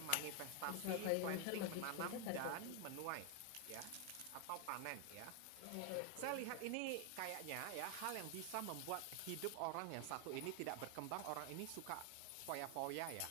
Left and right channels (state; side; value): different; both; correlation 0.01